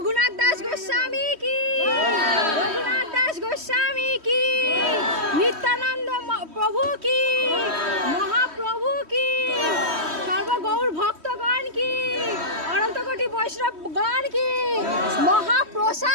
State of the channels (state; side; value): late; left; 3.1 ms